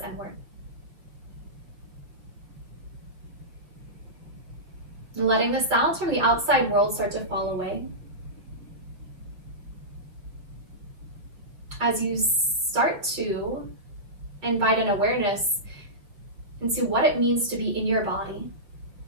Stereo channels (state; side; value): late; left; 5.9 ms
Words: inward. And letting the sounds from the outside world start to fall away. As you start to invite an awareness into what it means to be in your body